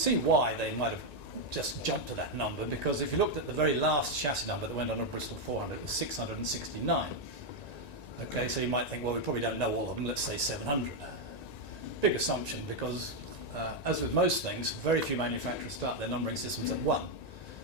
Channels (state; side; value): late; right; 1.9 ms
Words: why they might have just jumped to that number, because if you looked at the very last chassis number that went on a Bristol 400, it was 669. Okay, so you might think, well, we probably don't know all of them, let's say 700. Big assumption, because as with most things, very few manufacturers start their numbering systems at 1.